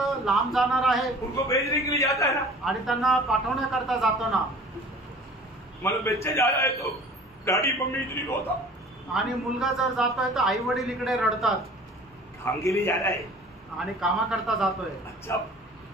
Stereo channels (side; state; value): both; normal; correlation 0.46